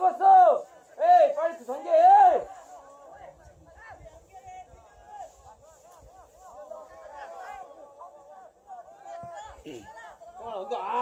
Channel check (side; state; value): both; identical; correlation 1.00